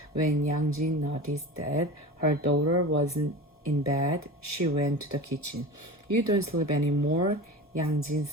When Yang Jin noticed that her daughter wasn't in bed, she went to the kitchen. You don't sleep anymore? Yang Jin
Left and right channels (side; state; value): both; normal; correlation 0.32